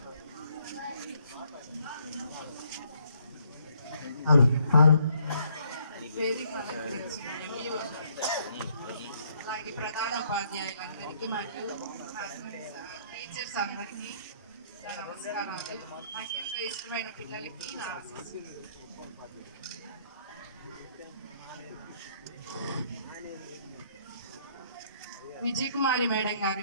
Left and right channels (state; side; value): inverted; both; correlation -0.67